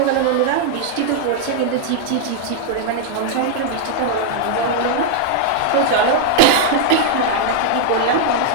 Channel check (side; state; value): both; different; correlation -0.01